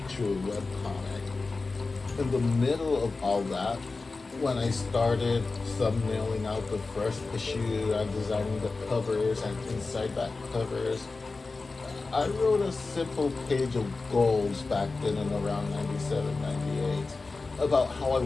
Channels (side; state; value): right; quieter; 3.8 dB